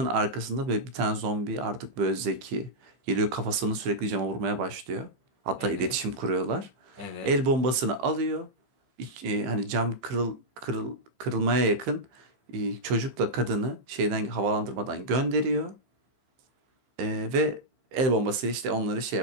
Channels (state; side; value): late; left; 15 ms